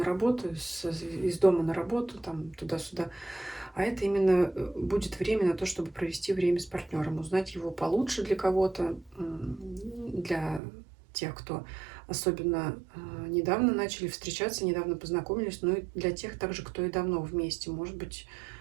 работу, из дома на работу, там туда-сюда, а это именно будет время на то, чтобы провести время с партнером, узнать его получше для кого-то, для тех, кто особенно недавно начали встречаться, недавно познакомились, но и для тех также, кто и давно вместе. Может быть,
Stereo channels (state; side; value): drops out; left; at 10.6 s